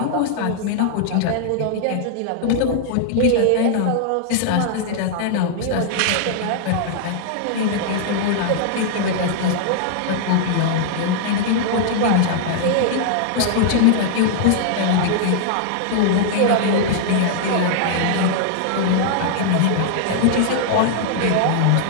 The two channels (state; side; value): different; both; correlation -0.01